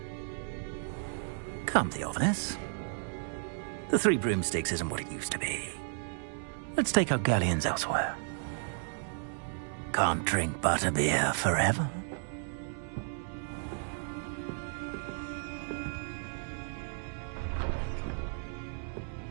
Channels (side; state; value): left; silent; 55 dB below the other